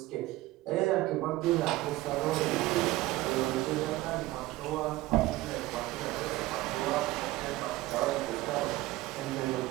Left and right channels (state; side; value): quieter; left; 18.0 dB